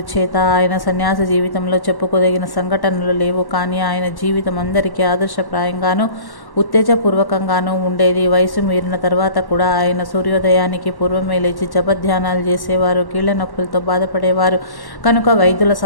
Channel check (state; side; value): late; right; 1.1 ms